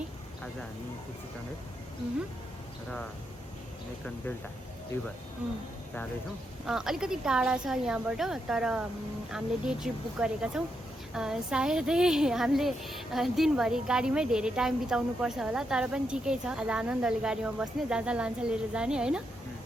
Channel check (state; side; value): normal; both; correlation 0.82